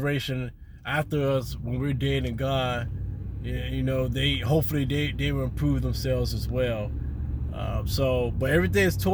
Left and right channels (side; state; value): both; identical; correlation 1.00